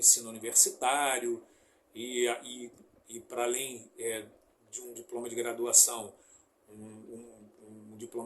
universitário e para além de um diploma de graduação, um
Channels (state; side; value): identical; both; correlation 1.00